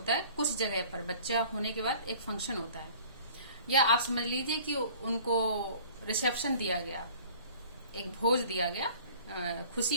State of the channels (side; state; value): both; inverted; correlation -0.48